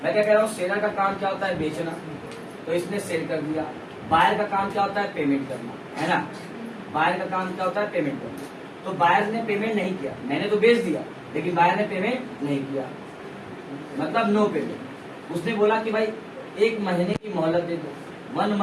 मैं क्या कह रहा हूँ, सेलर का काम क्या होता है? बेचना, तो इसने सेल कर दिया। बायर का काम क्या होता है? पेमेंट करना, है ना। बायर का काम क्या होता है? पेमेंट करना। तो बायर ने पेमेंट नहीं किया, मैंने तो बेच दिया, लेकिन बायर ने पेमेंट नहीं किया, मतलब नो पेमेंट। उसने बोला कि भाई 1 महीने की मोहलत दे दो, 1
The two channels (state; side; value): identical; both; correlation 1.00